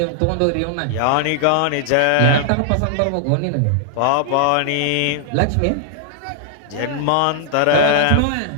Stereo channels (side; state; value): both; different; correlation -0.01